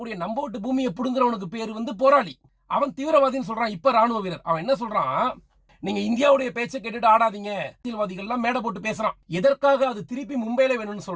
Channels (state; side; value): identical; both; correlation 1.00